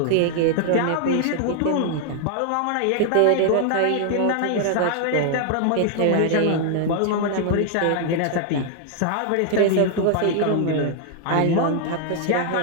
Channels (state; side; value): different; both; correlation 0.00